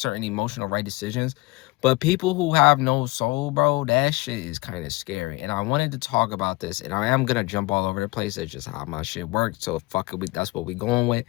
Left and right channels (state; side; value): quieter; right; 22.5 dB